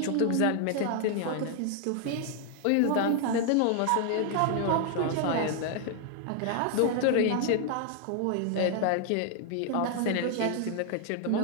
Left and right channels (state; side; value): different; both; correlation 0.00